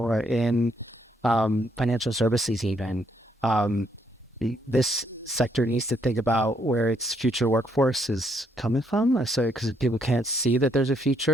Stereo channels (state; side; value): normal; both; correlation 0.72